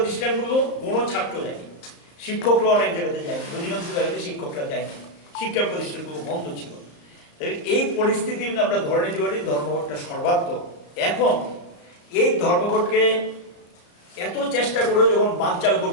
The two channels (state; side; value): late; right; 34 ms